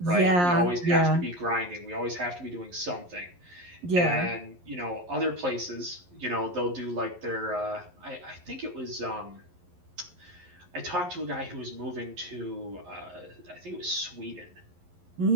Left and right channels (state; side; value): late; left; 11 ms